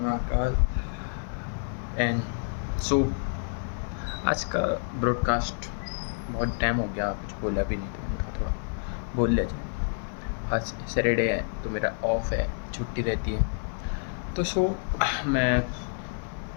एंड सो आज का ब्रॉडकास्ट बहुत टाइम हो गया, कुछ बोला भी नहीं, तो मैंने कहा थोड़ा बोल लिया जाए। आज सैटरडे है तो मेरा ऑफ है, छुट्टी रहती है। तो मैं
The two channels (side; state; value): right; silent; digital silence